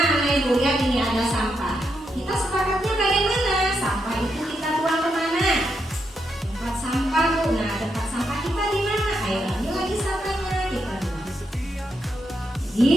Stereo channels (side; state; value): both; normal; correlation 0.82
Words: ibu lihat ini ada sampah. Kita sepakatnya bagaimana? Sampah itu kita buang kemana? Tempat sampah bu. Nah, tempat sampah kita di mana? Ayo ambil lagi sampahnya, kita buang. Jadi